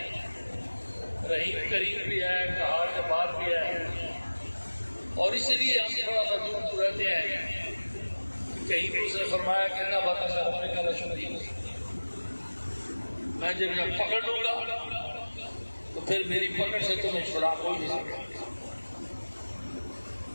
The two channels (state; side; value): inverted; both; correlation -1.00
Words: رحیم کریم بھی ہے، کہار جبار بھی ہے، اور اس لیے ہم تھوڑا سا دور رہتے ہیں. کہیں بھی اس نے فرمایا کہ نہ بتا سے ہونے کا لشکری، میں جب پکڑ لوں گا تو پھر میری پکڑ سے تمہیں چھڑا کوئی نہیں سکتا.